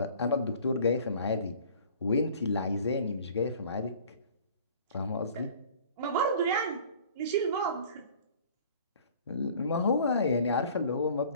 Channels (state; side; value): inverted; both; correlation -0.48